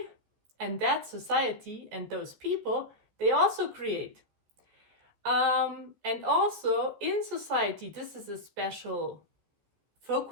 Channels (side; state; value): left; late; 14 ms